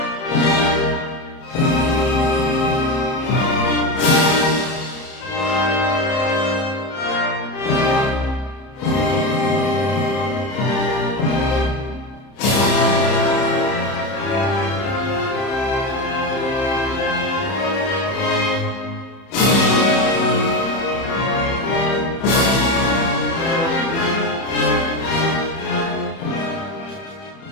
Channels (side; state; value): right; late; 30 ms